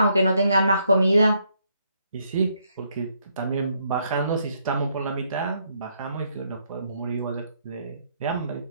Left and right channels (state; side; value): inverted; both; correlation -0.73